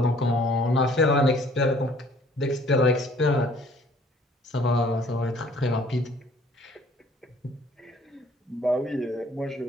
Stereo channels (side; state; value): both; normal; correlation 0.57